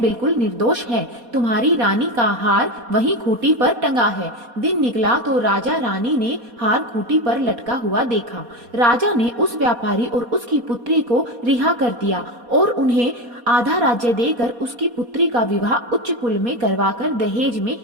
निर्दोष है। तुम्हारी रानी का हार वहीं खूंटी पर टंगा है। दिन निकला तो राजा रानी ने हार खूंटी पर लटका हुआ देखा। राजा ने उस व्यापारी और उसकी पुत्री को रिहा कर दिया और उन्हें आधा राज्य देकर उसकी पुत्री का विवाह उच्च कुल में करवाकर दहेज में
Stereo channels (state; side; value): late; left; 4.2 ms